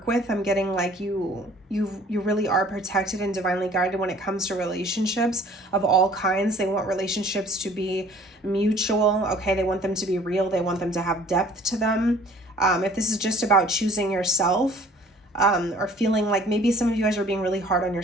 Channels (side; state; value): both; normal; correlation 0.53